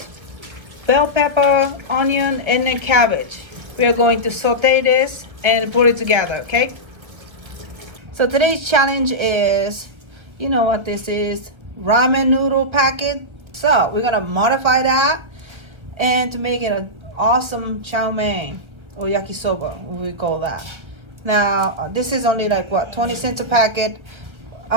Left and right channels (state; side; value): late; left; 1.5 ms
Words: bell pepper, onion, and then cabbage. We are going to saute this and put it together, okay? So today's challenge is, you know what this is, ramen noodle packet. So we're gonna modify that and to make it an awesome chow mein or yakisoba, we call that. Now this is only like what, 20 cents a packet.